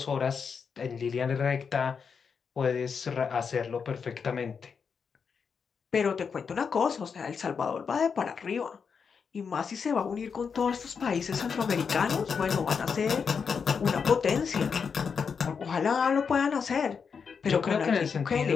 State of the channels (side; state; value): right; quieter; 6.1 dB